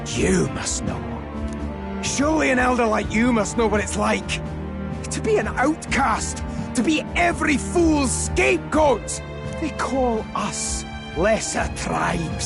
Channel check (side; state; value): both; identical; correlation 1.00